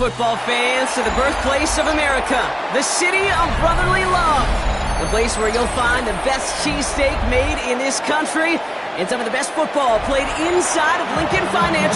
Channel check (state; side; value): identical; both; correlation 1.00